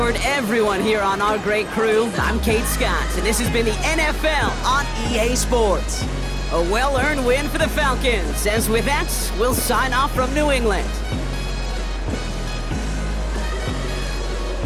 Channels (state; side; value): identical; both; correlation 1.00